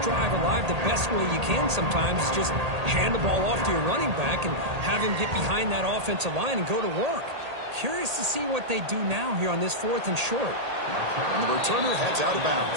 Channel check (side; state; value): left; late; 1.8 ms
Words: alive the best way you can sometimes. Just hand the ball off to your running back and have him get behind that offensive line and go to work. Curious to see what they do now here on this 4th and short. And the returner heads out of